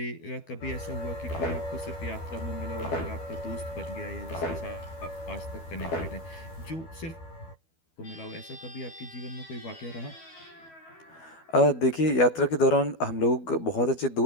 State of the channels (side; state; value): right; late; 12 ms